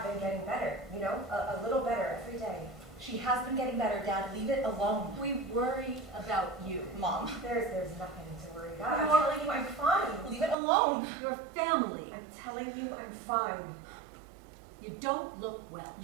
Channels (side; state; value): left; drops out; at 10.6 s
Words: been getting better, you know, a little better every day. She has been getting better, Dad. Leave it alone. We worry about you. Mom, There's nothing to worry about. I'm No. telling you I'm fine. leave it alone. Your family. I'm telling you I'm fine. You don't look well.